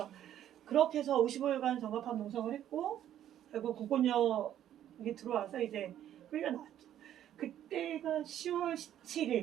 그렇게 해서 55일간 정갑합 농성을 했고 결국 공권력이 들어와서 이제 끌려나왔죠. 그때가 10월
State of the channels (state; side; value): quieter; left; 11.2 dB